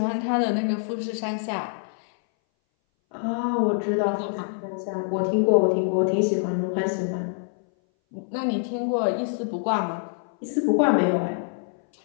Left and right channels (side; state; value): right; silent; 59 dB below the other